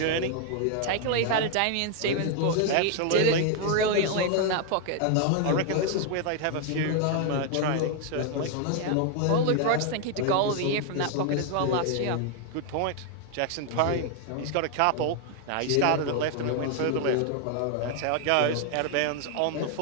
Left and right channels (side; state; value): both; different; correlation 0.00